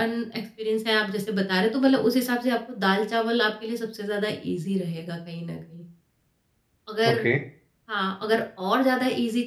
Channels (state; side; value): identical; both; correlation 1.00